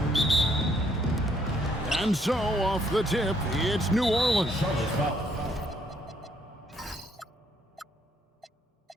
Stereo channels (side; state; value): both; normal; correlation 0.69